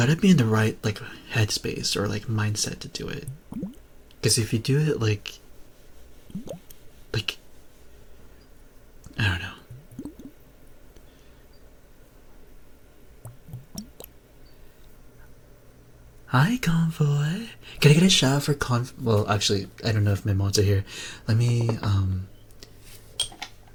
be in the right like headspace or like mindset to do it. Because if you do it like I don't know. Hi, Convoy. Can I get a shout out for Well, actually, I don't know if my mods are here. Let me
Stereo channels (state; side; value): identical; both; correlation 1.00